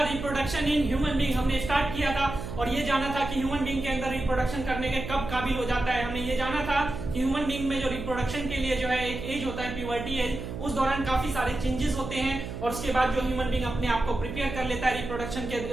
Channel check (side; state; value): right; noise; hum, 8 dB below the sound